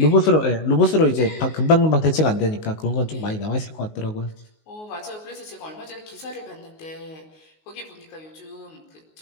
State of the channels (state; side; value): late; right; 19 ms